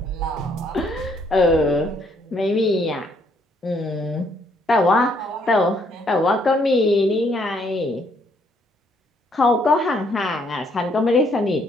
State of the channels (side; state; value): both; normal; correlation 0.69